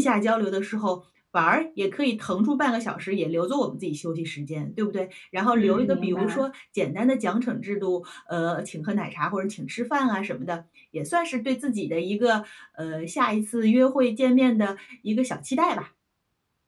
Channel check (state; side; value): identical; both; correlation 1.00